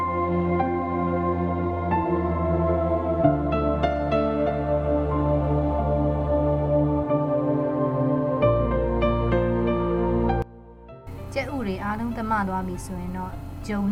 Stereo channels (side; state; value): both; identical; correlation 1.00